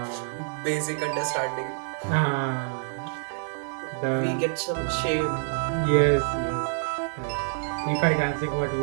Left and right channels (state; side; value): silent; left; digital silence